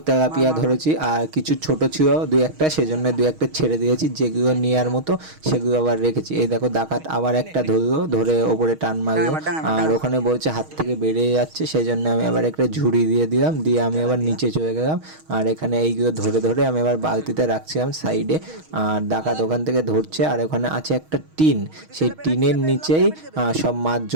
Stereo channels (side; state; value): left; late; 6.4 ms